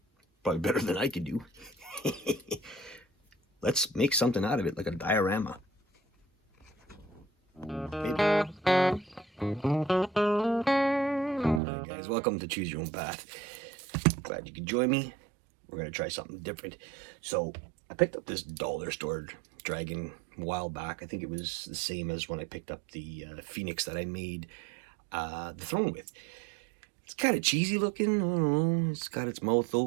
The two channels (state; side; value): drops out; left; at 11.6 s